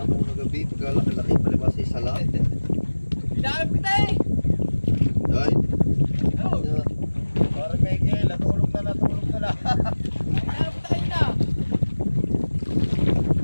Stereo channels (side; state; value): both; inverted; correlation -1.00